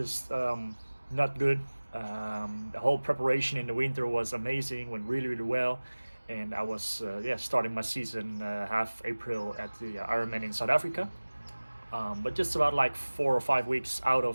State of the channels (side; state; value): both; inverted; correlation -1.00